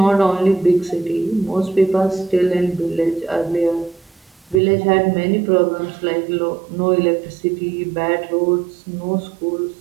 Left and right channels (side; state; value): left; drops out; at 4.6 s